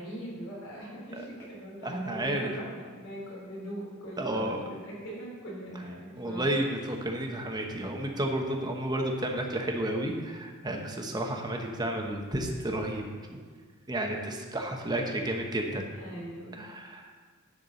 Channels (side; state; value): both; normal; correlation 0.42